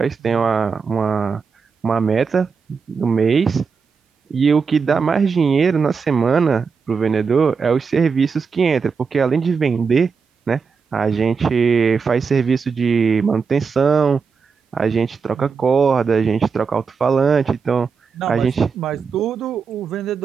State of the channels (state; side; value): quieter; left; 5.5 dB